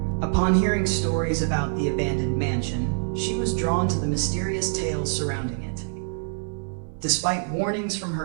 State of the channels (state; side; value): silent; left; digital silence